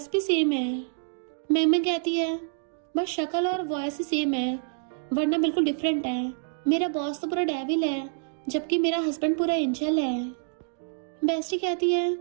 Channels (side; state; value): left; silent; digital silence